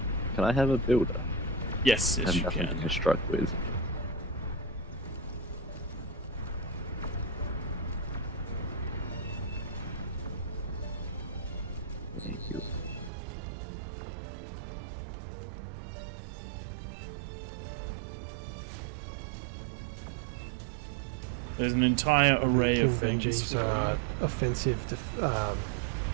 Can I have a builder? Yes, yes, I have you nothing can. to construct with. Thank you. There's an entire array King of things. Benji's offensive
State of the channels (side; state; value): left; drops out; at 13.1 s